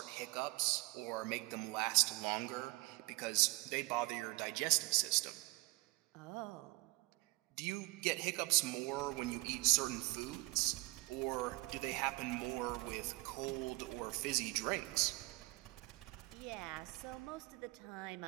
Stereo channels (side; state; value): left; quieter; 22.5 dB